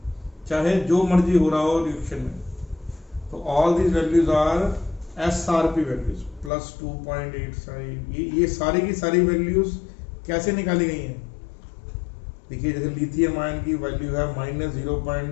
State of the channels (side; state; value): right; drops out; at 6.5 s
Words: चाहे जो मर्जी हो रहा हो रिएक्शन में। तो all these values are SRP values plus 2.85। ये सारी की सारी वैल्यूज कैसे निकाली गई हैं, देखिए जैसे लिथियम आयन की वैल्यू है